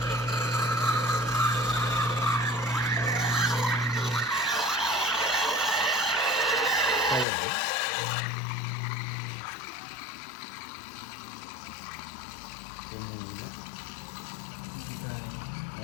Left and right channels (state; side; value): drops out; right; at 7.2 s